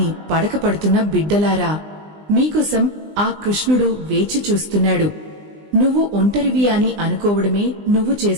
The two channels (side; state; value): left; late; 20 ms